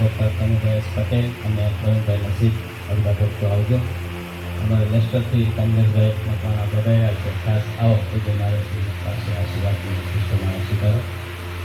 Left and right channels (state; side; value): identical; both; correlation 1.00